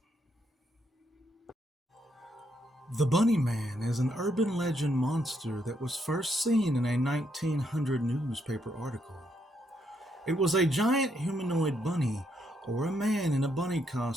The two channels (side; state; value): both; normal; correlation 0.76